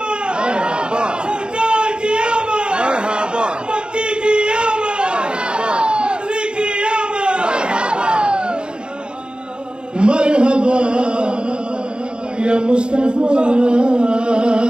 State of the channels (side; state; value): left; late; 0.051 ms